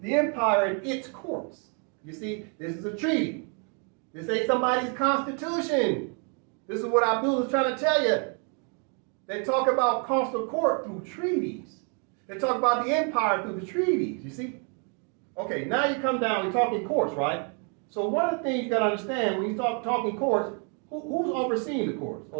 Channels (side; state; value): left; quieter; 39.4 dB